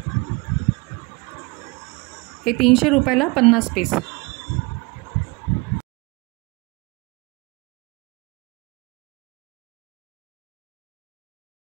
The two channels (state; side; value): quieter; left; 27.1 dB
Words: हे 300 रुपयाला 50 पीस.